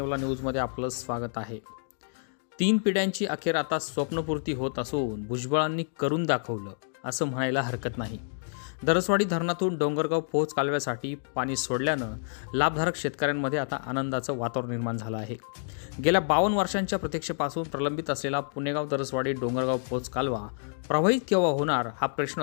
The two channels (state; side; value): silent; right; digital silence